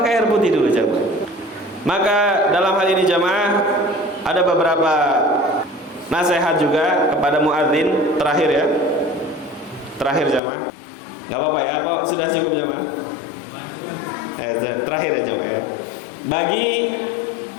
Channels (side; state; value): right; drops out; at 10.4 s